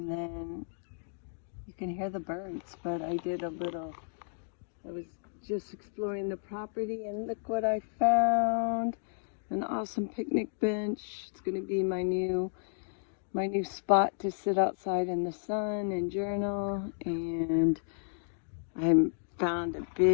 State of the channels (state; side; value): silent; right; digital silence